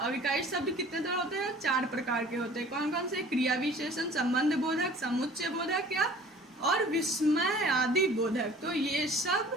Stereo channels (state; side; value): normal; both; correlation 0.48